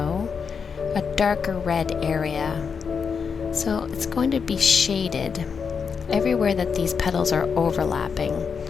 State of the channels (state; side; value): quieter; right; 6.0 dB